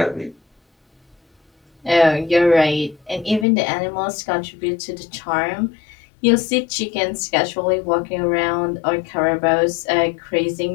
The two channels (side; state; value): right; drops out; at 3.5 s